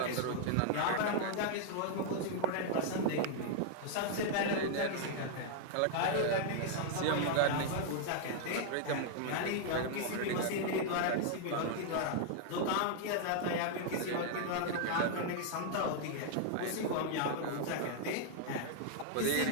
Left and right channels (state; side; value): different; both; correlation 0.00